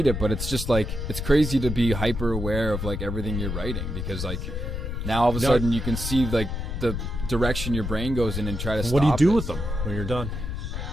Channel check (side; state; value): left; noise; rumble, 4 dB below the sound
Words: it, but it's just like, it's crazy to be hyper aware of like everything you're writing, because like now all of a sudden you can see like the direction your brain goes in and try to stop it. What do you do with them when you're done?